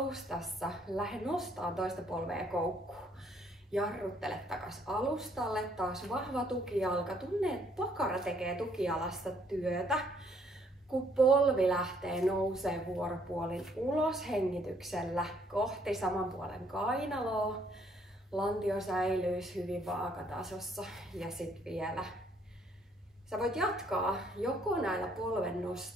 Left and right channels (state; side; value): normal; both; correlation 0.66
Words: Lähde nostaa toista polvea koukkuun. Jarruttele takas alustalle. Taas vahva tukijalka. Tunne, että pakara tekee tukijalasta työtä. Kun polvi lähtee nousee vuoropuolin ulos hengityksellä kohti saman puolen kainaloa. Lantio säilyisi hyvin vaakatasossa. Ja sitten vielä sä voit jatkaa joko näillä polven